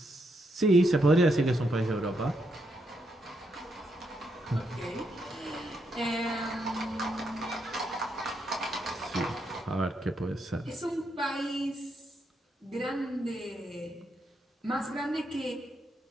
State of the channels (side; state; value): both; normal; correlation 0.79